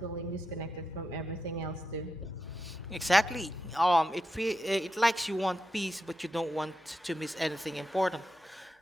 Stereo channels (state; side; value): normal; both; correlation 0.87